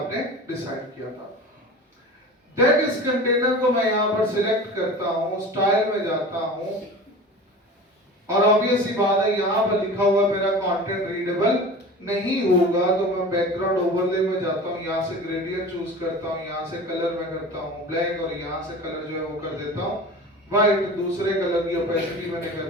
डिसाइड किया था। देन इस कंटेनर को मैं यहां पर सिलेक्ट करता हूं, स्टाइल में जाता हूं, और ऑब्वियस सी बात है यहां पर लिखा हुआ मेरा कंटेंट रीडेबल नहीं होगा, तो मैं बैकग्राउंड ओवरले में जाता हूं, यहां से ग्रेडियंट चूज करता हूं, यहां से कलर में करता हूं ब्लैक, और यहां से कलर जो है वो कर देता हूं व्हाइट। दूसरे कलर की ओपेसिटी मैंने कर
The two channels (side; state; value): both; normal; correlation 0.36